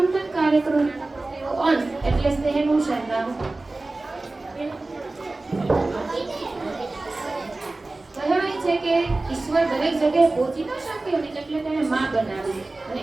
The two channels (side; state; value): left; quieter; 3.1 dB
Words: કાર્યક્રમનો અંશ એટલે સ્નેહનું સરનામું. કહેવાય છે કે ઈશ્વર દરેક જગ્યાએ પહોંચી ન શક્યો ને એટલે તેને માં બનાવી અને